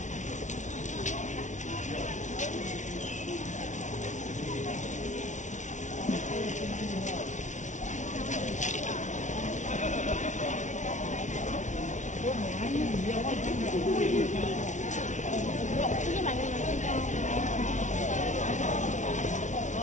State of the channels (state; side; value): late; right; 0.35 ms